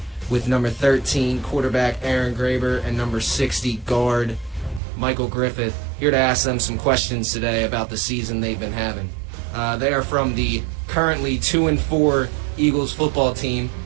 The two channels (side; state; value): left; drops out; at 4.8 s